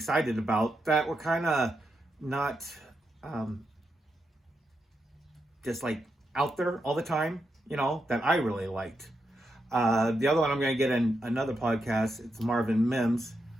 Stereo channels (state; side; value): normal; both; correlation 0.84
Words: about that were kind of not just like out there all the time, you know, that I really liked. The other one I'm going to get in another podcast. It's Marvin Mims,